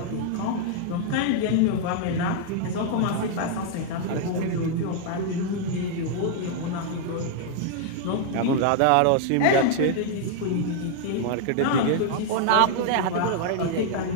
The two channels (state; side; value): different; both; correlation 0.00